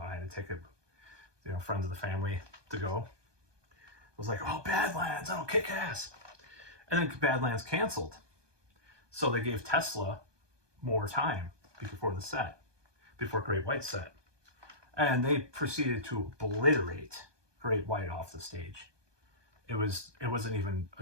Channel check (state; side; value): late; left; 1.2 ms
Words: I had a ticket, you know, friends of the family to go. I was like, oh, Badlands, that'll kick ass. And then Badlands canceled. So they gave Tesla more time before Great White set. And they proceeded to obliterate Great White off the stage. It wasn't even